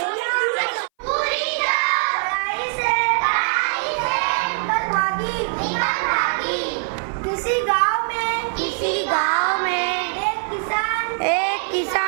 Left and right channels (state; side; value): silent; left; 60 dB below the other